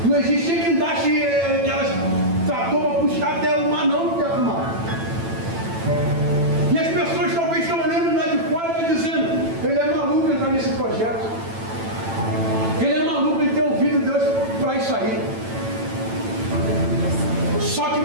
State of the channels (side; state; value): left; late; 9.0 ms